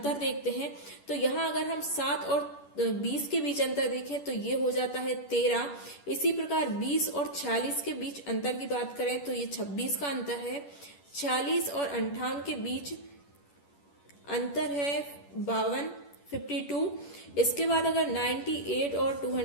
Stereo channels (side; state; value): right; late; 10 ms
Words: देखते हैं। तो यहाँ अगर हम 7 और 20 के बीच अंतर देखें तो ये हो जाता है 13। इसी प्रकार 20 और 46 के बीच अंतर की बात करें तो ये 26 का अंतर है। 46 और 58 के बीच अंतर है 52। इसके बाद अगर 98 और